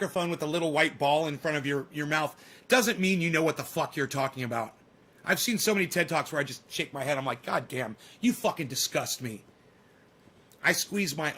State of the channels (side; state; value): both; identical; correlation 1.00